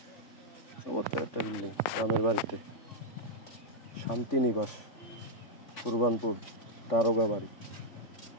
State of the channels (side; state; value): right; late; 3.6 ms